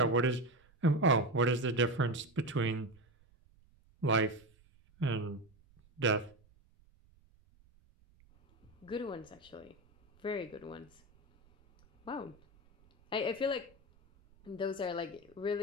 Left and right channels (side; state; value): right; noise; rumble, 30 dB below the sound